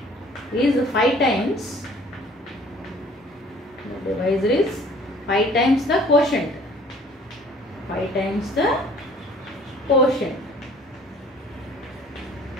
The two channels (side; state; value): both; normal; correlation 0.53